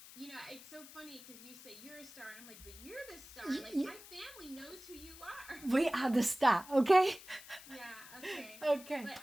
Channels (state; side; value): noise; left; hiss, 17 dB below the sound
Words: it's so funny because you say you're a star, and I'm like, but you're the star. Like, my family knows who you are. We are the star, okay? Yeah. Okay. Okay. But